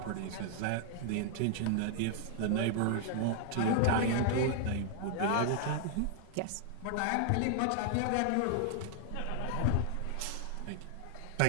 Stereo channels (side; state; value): both; different; correlation -0.01